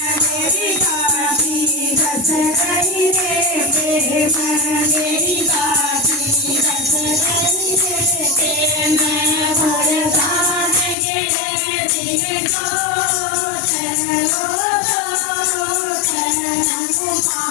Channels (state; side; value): drops out; right; at 11.0 s